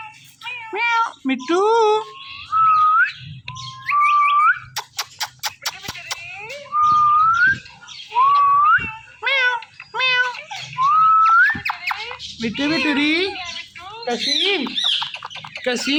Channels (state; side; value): identical; both; correlation 1.00